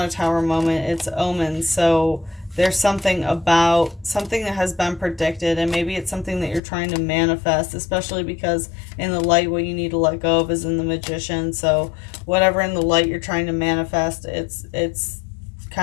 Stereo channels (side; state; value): right; drops out; at 6.6 s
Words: a Tower moment, it's omens. So there's something about something that has been predicted, and maybe it's something that you're trying to manifest, especially because in the light, what you need to let go of is in the Magician. So whatever in the light you're trying to manifest, it's